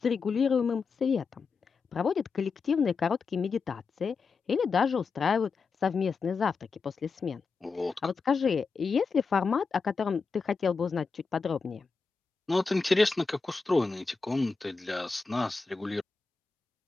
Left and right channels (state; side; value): quieter; right; 4.8 dB